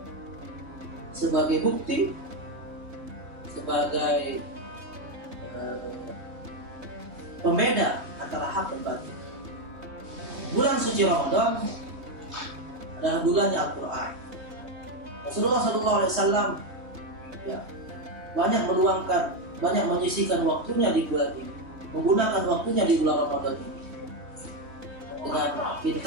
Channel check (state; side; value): late; left; 3.4 ms